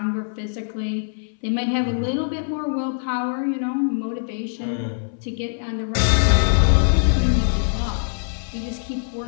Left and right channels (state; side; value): silent; right; 60 dB below the other